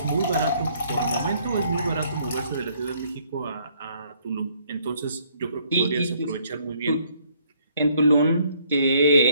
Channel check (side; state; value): both; inverted; correlation -0.65